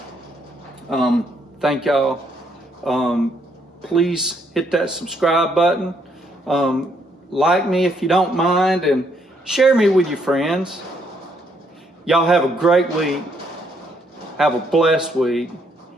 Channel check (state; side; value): normal; both; correlation 0.72